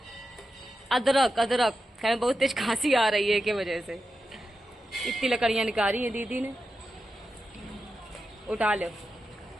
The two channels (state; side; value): normal; both; correlation 0.90